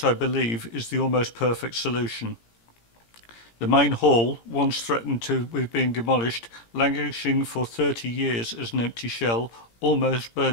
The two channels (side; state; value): right; late; 17 ms